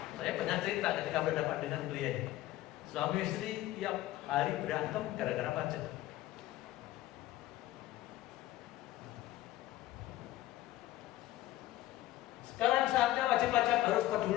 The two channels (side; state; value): right; quieter; 15.3 dB